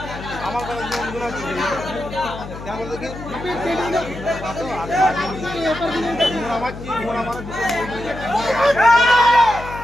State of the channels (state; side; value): noise; left; hum, 12 dB below the sound